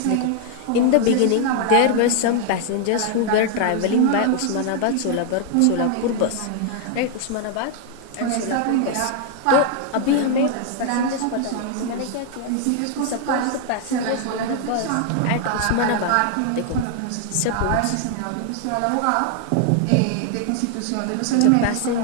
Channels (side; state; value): both; different; correlation 0.00